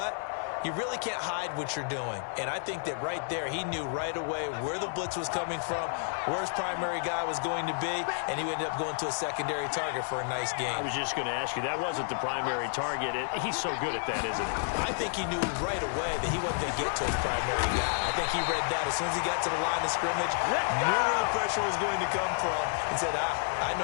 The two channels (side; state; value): right; silent; digital silence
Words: you really can't hide what you're doing. And I think that right there, he knew right away where the blitz was coming from, where his primary guy was going to be, and he ended up going to a secondary target for a nice game. I was just going to ask you, that wasn't the primary target. He's so good at that, isn't he? I think he knew right away that he wasn't going to get to his primary guy. I think he read that as soon as he got to the line of scrimmage, knew where the pressure was going to come from, and said, I